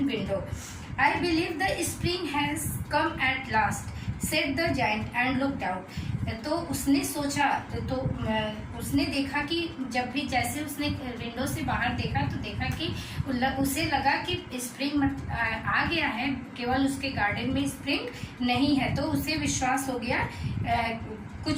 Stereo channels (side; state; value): both; identical; correlation 1.00